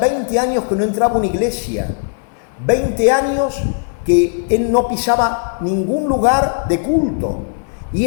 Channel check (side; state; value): right; silent; 68 dB below the other